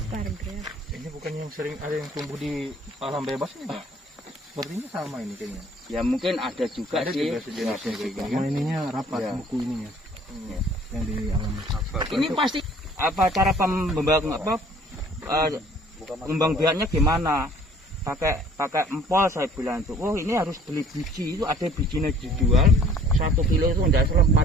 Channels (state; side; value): normal; both; correlation 0.54